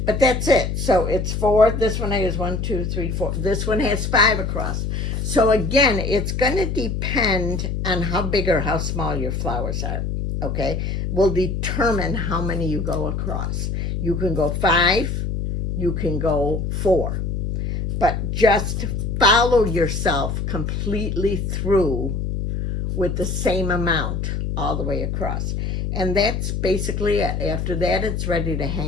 but that's it. So it's 4. This one has 1, 2, 3, 4. This one has 5 across. So again, it's going to depend on how big or how small your flowers are. Okay, will determine how many you go across. You can go 5, you can go 4, but just follow yourself completely through with the same amount all the way across. And that's basically it. After that, it's ready to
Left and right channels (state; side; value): noise; left; hum, 2 dB below the sound